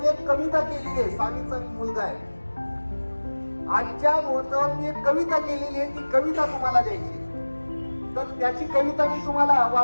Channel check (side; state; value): both; inverted; correlation -1.00